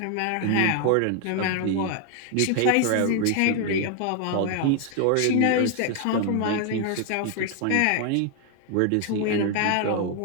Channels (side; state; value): both; different; correlation 0.01